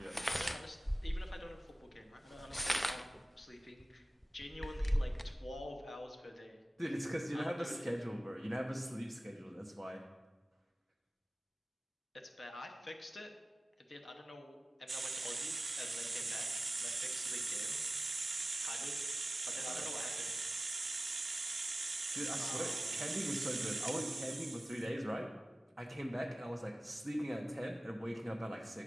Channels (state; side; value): normal; both; correlation 0.97